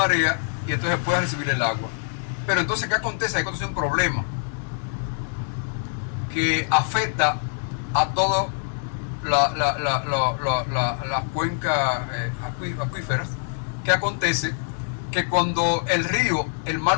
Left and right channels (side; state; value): right; silent; digital silence